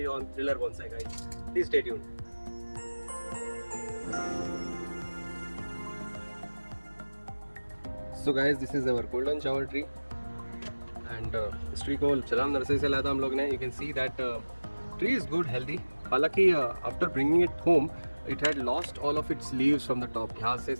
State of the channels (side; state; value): both; inverted; correlation -1.00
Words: on Thiller bonsai. Guys, please stay tuned. So guys, this is our golden shower tree and इस ट्री को चलाम नर्सरी से लाया था हम लोग ने। You can see that tree is good healthy. हालांकि after bringing it home it had lost all of its leaves from the top. यहाँ से